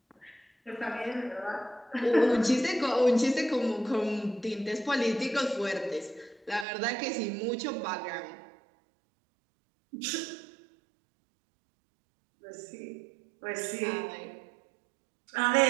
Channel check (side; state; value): left; drops out; at 6.7 s